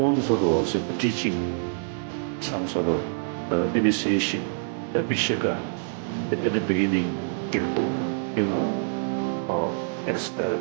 guru was teaching some sort of initiation, the Vishaka at the beginning, you know, expel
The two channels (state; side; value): silent; left; digital silence